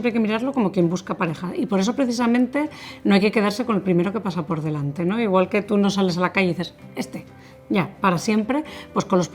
hay que mirarlo como quien busca pareja y por eso precisamente no hay que quedarse con el primero que pasa por delante, ¿no? Igual que tú no sales a la calle y dices, ya, para siempre, pues con los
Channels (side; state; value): both; identical; correlation 1.00